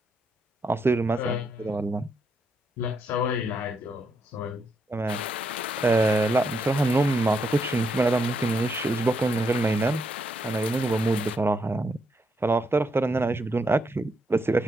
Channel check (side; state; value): both; normal; correlation 0.78